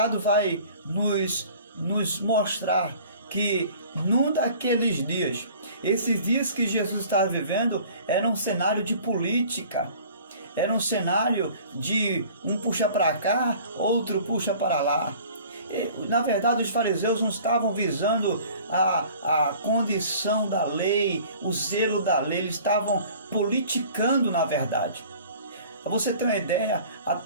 vai nos mostrar que num daqueles dias, esses dias que Jesus estava vivendo, era um cenário de política, era um cenário de um puxa para cá, outro puxa para lá. Na verdade, os fariseus não estavam visando a condição da lei, o zelo da lei, eles estavam politicando, na verdade. Para você ter uma ideia,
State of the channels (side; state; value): both; inverted; correlation -0.48